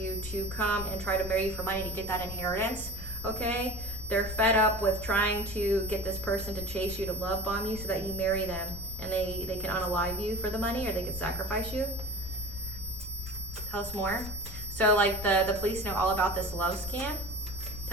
to come and try to marry you for money to get that inheritance, okay? They're fed up with trying to get this person to chase you, to love bomb you so that you marry them, and they can unalive you for the money, or they can sacrifice you. Tell us more. So like the police know all about this love scam.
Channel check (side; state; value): left; noise; rumble, 10 dB below the sound